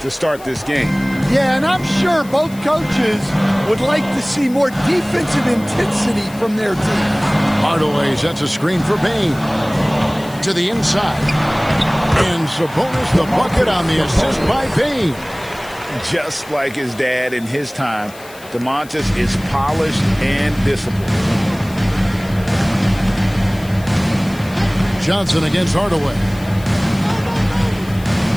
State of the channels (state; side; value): noise; left; hiss, 21 dB below the sound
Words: to start this game. Yeah, and I'm sure both coaches would like to see more defensive intensity from their team. Hardaway sets a screen for Payne. To the inside. And Sabonis the bucket on the assist by Payne. Just like his dad in his time, DeMontis is polished and disciplined. Johnson against Hardaway.